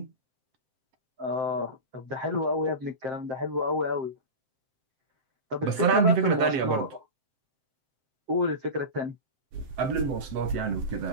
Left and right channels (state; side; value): late; left; 7.7 ms